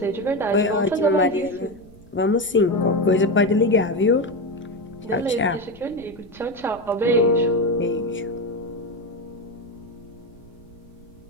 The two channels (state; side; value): noise; right; rumble, 23 dB below the sound